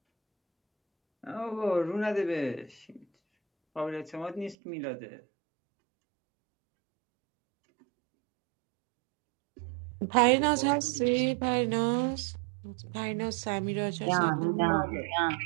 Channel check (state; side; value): drops out; left; at 4.5 s